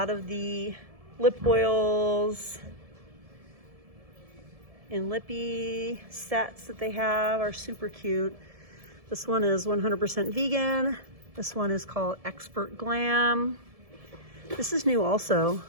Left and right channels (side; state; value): left; late; 1.7 ms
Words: of the lip oils and lippy sets that they have are super cute. This one is 100% vegan. This one is called Expert Glam. This is new also.